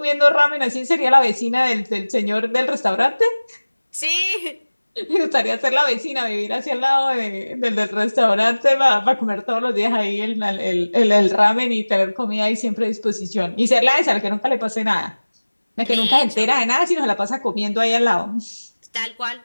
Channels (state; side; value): inverted; both; correlation -1.00